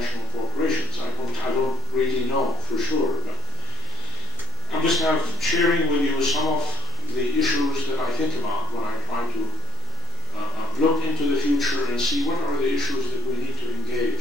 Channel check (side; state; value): right; quieter; 3.5 dB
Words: corporations. I don't really know for sure, but I'm just kind of sharing with you some of the issues that I think about when I try to look into the future and see what are the issues that we need to